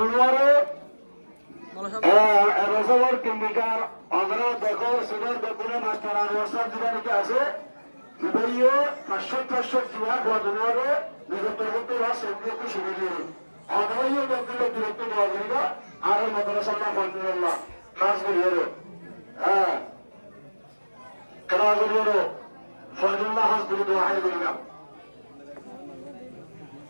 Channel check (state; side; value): inverted; both; correlation -1.00